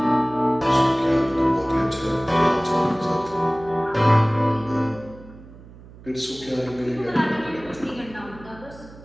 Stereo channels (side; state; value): right; noise; hum, 20 dB below the sound